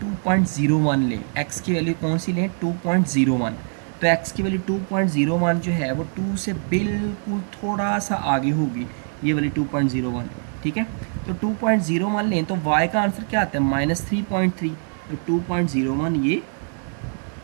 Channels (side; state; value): left; silent; 57 dB below the other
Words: 2.01 लें, x की वैल्यू कौन सी लें, 2.01, तो x की वैल्यू 2.01 जो है वो 2 से बिल्कुल थोड़ा सा आगे होगी, ये वाली 2.01। ठीक है। तो 2.01 लें तो y का आंसर क्या आता है, -3.3। तो 2.01 ये